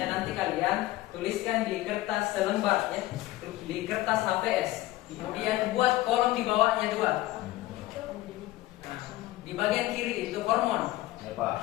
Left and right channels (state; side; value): quieter; right; 16.9 dB